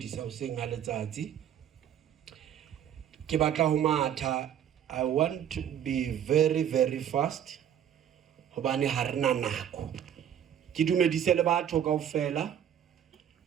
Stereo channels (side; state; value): left; quieter; 9.7 dB